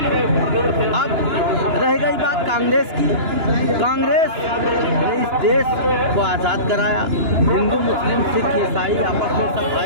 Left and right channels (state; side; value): late; left; 2.9 ms